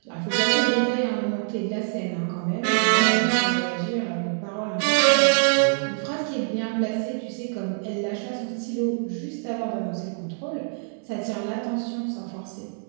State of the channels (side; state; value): left; silent; 62 dB below the other